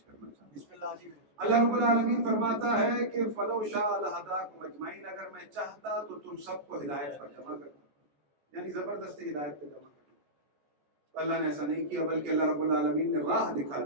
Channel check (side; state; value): left; late; 14 ms